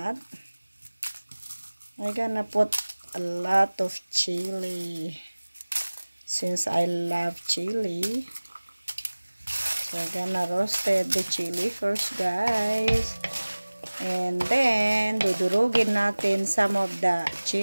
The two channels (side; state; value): both; inverted; correlation -1.00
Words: I'm gonna put a lot of chili since I love chili. So I'm gonna roasted the chili first guys, and then dudurugin natin some of the